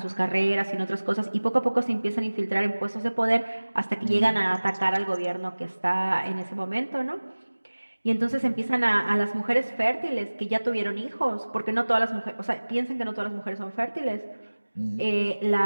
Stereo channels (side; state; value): both; inverted; correlation -1.00